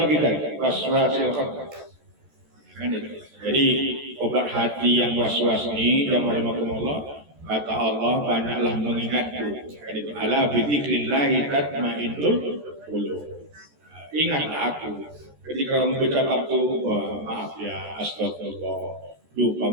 kita? Was-was silahkan. Jadi obat hati yang was-was ini yang rahimahumullah kata Allah banyaklah mengingatku. Ala bidzikrillahi tatmainnul qulub. Ingat aku ketika mengucap aku maaf ya astagfirullah lupa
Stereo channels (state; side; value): late; left; 14 ms